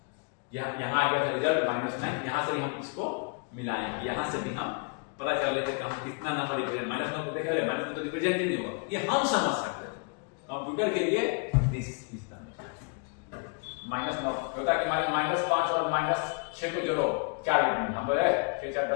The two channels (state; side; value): quieter; right; 36.7 dB